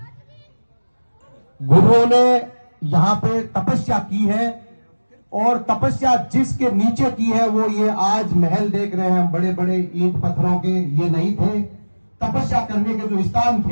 गुरुओं ने यहाँ पे तपस्या की है और तपस्या जिसके नीचे की है वो ये आज महल देख रहे हैं हम, बड़े बड़े ईंट पत्थरों के, ये नहीं थे। तपस्या करने के जो स्थान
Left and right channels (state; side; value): inverted; both; correlation -1.00